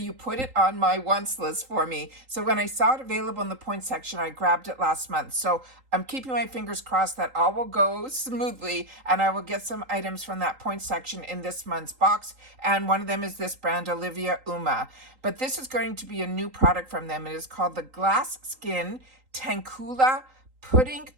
put it on my wants list for me. So when I saw it available in the points section, I grabbed it last month. So I'm keeping my fingers crossed that all will go smoothly, and I will get some items from that points section in this month's box. And one of them is this brand, Olivia Uma. But this is going to be a new product from them. It is called the Glass Skin Tankula Pudding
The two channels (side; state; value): left; late; 3.8 ms